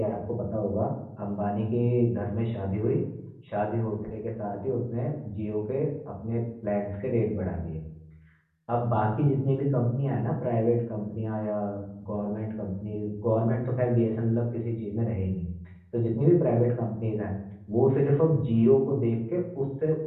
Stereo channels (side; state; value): both; identical; correlation 1.00